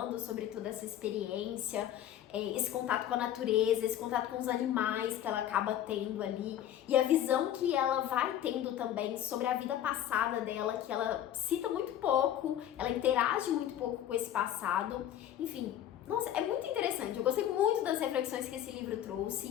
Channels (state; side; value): quieter; right; 11.2 dB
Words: sobre toda essa experiência, esse contato com a natureza, esse contato com os animais que ela acaba tendo ali, e a visão que ela vai tendo também sobre a vida passada dela, que ela cita muito pouco, ela interage muito pouco com esse passado, enfim. Nossa, é muito interessante. Eu gostei muito das reflexões que esse livro